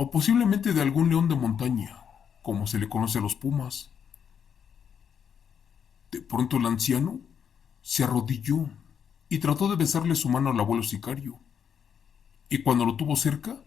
posiblemente de algún león de montaña, como se le conoce a los pumas. De pronto el anciano se arrodilló y trató de besarle su mano al abuelo sicario, y cuando lo tuvo cerca,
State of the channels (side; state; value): right; quieter; 7.7 dB